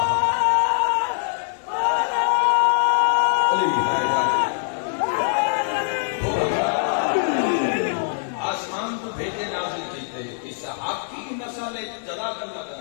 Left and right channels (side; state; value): right; silent; 63 dB below the other